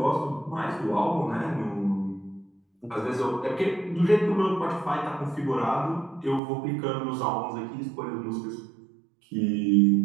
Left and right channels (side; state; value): left; drops out; at 6.4 s